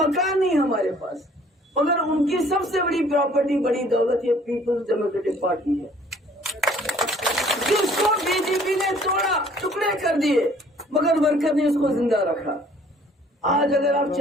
नहीं हमारे पास, मगर उनकी सबसे बड़ी प्रॉपर्टी, बड़ी दौलत ये पीपल्स डेमोक्रेटिक पार्टी है, जिसको बीजेपी ने तोड़ा, टुकड़े कर दिए, मगर वर्कर ने उसको जिंदा रखा। आज अगर आप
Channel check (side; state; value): both; normal; correlation 0.57